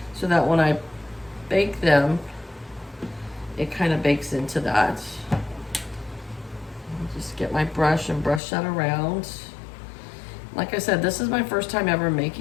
so that when I bake them, it kind of bakes into that. I'll just get my brush and brush that around. Like I said, this is my first time ever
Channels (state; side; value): drops out; right; at 8.4 s